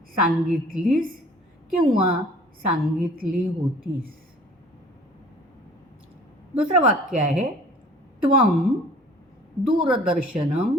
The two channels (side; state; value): both; normal; correlation 0.50